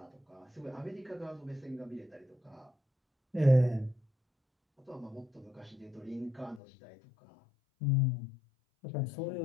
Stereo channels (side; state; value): right; drops out; at 6.6 s